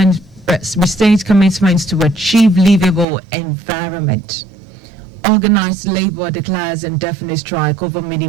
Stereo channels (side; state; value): left; drops out; at 3.1 s